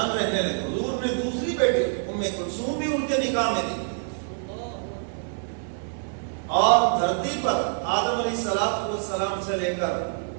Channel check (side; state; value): left; silent; 60 dB below the other